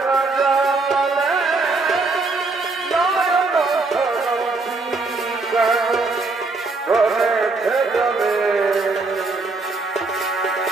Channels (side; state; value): left; quieter; 3.6 dB